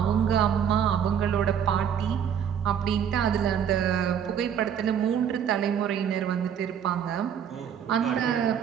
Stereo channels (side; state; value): left; quieter; 8.4 dB